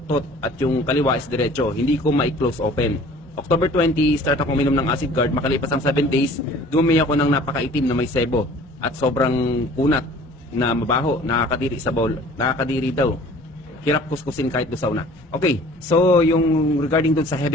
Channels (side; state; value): both; normal; correlation 0.49